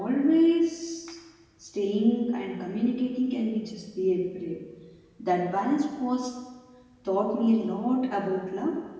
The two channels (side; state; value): both; identical; correlation 1.00